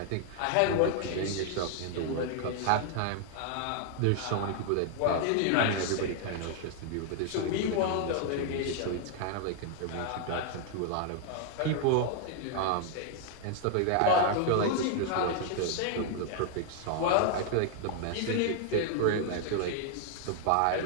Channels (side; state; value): both; different; correlation 0.00